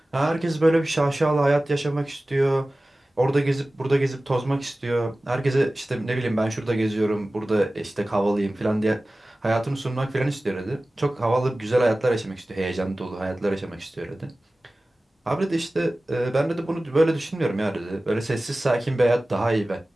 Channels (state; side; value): normal; both; correlation 0.97